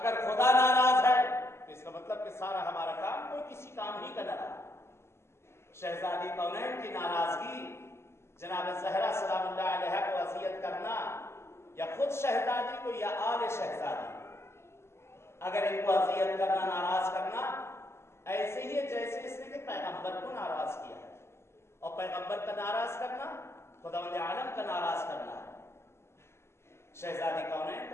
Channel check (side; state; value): right; late; 0.13 ms